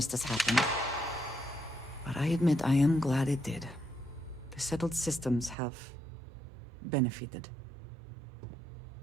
happened. But I admit I am glad it did. The settled systems have benefited.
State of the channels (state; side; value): drops out; left; at 5.6 s